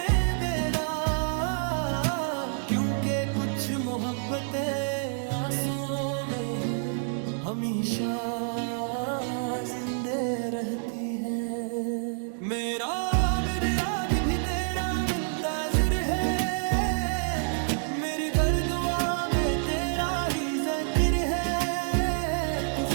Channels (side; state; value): left; silent; digital silence